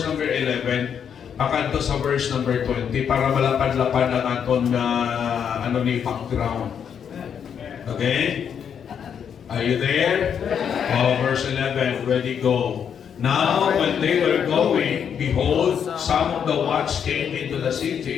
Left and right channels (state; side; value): quieter; right; 7.9 dB